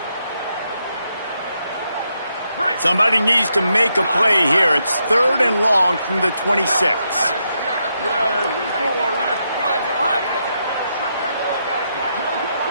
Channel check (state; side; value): inverted; both; correlation -0.81